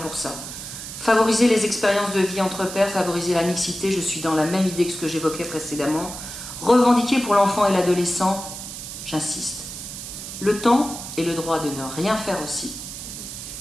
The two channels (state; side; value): noise; right; hiss, 9 dB below the sound